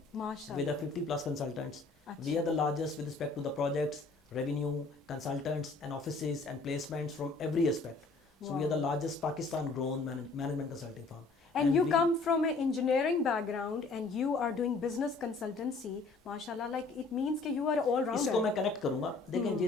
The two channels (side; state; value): right; quieter; 3.8 dB